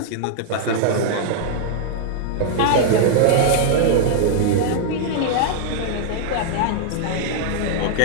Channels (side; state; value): both; different; correlation -0.01